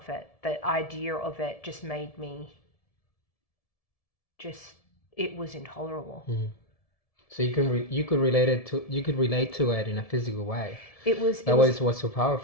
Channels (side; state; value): right; late; 1.7 ms